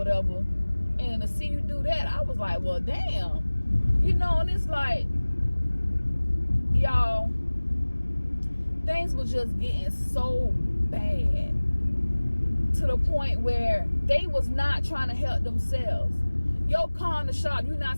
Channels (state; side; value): inverted; both; correlation -1.00